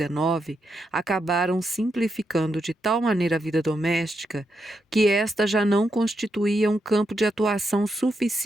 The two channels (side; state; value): both; normal; correlation 0.83